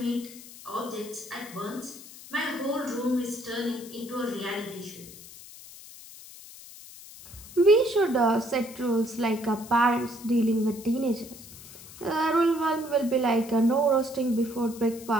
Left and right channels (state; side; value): noise; left; hiss, 17 dB below the sound